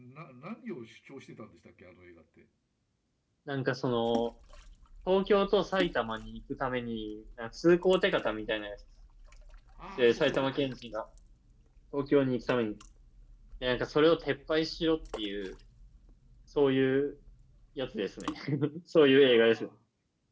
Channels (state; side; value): identical; both; correlation 1.00